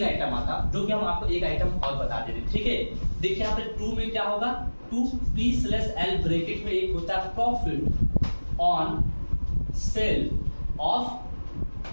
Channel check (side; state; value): both; inverted; correlation -1.00